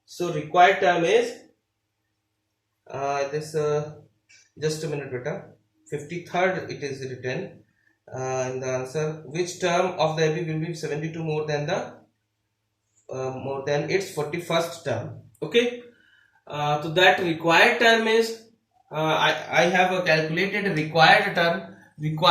So required term is this just a minute beta, 53rd it is written in the answer. Which term of the AP will be 72 more than its 41st term? Okay. So that required term is I have calculated required term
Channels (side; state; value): both; identical; correlation 1.00